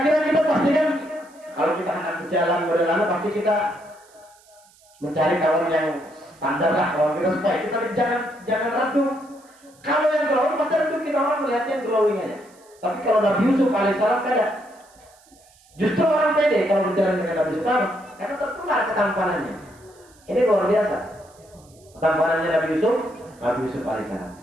kita pasti kan, kalau kita akan berjalan berlama pasti kita mencari kawan yang standar lah, kawan kita supaya kita jangan redup. Kalau yang glowing pasti redup, kita orang melihatnya yang glowing aja. Tapi kalau Nabi Yusuf alaihissalam kada. Justru orang pede kalau berjalan dengan Nabi Yusuf karena tertular ketampanannya. Ini luar biasa. Ketampanannya Nabi Yusuf alaihissalam.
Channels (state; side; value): noise; right; hiss, 29 dB below the sound